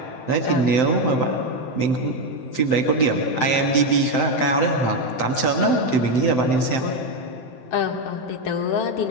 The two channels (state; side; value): late; right; 7.8 ms